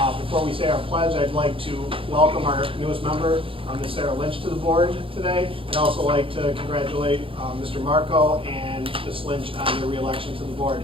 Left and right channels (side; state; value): left; late; 0.26 ms